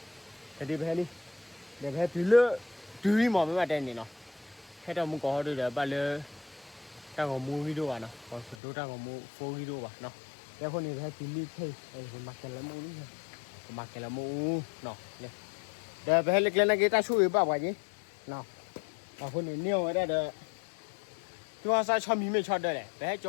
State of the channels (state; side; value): drops out; right; at 8.6 s